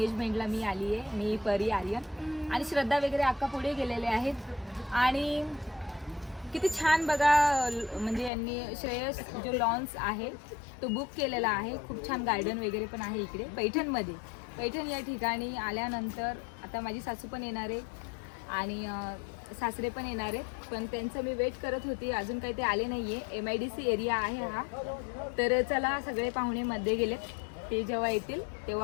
मी आली आहे. मी परी, आर्यन आणि श्रद्धा वगैरे अक्का पुढे गेलेले आहेत. आणि किती छान बघा, म्हणजे यांनी श्रेयस जो लॉन्स आहे तो बुक केलेला आहे. खूप छान गार्डन वगैरे पण आहे इकडे पैठणमध्ये. पैठण या ठिकाणी आल्यानंतर आता माझी सासू पण येणार आहे आणि सासरे पण येणार आहेत, पण त्यांचं मी वेट करत होती, अजून काही ते आले नाही आहे. MIDC एरिया आहे हा. तर चला, सगळे पाहुणे मध्ये गेलेत, ते जेव्हा येतील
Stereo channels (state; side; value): drops out; right; at 8.3 s